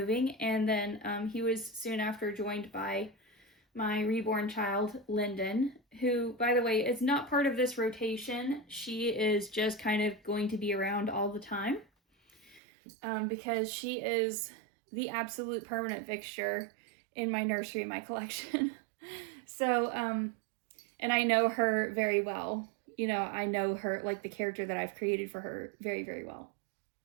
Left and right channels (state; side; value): drops out; left; at 12.6 s